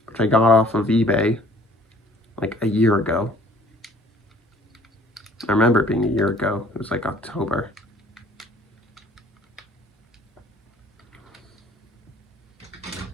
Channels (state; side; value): normal; both; correlation 0.54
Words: which I got off of eBay like a year ago. I remember it being a year ago. It was like October.